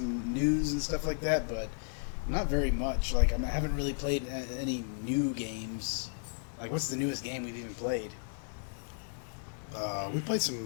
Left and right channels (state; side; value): silent; right; digital silence